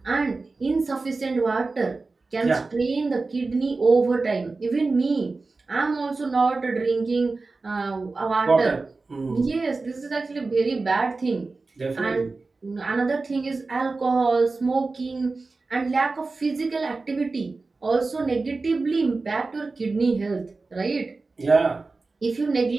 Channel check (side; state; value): left; quieter; 3.7 dB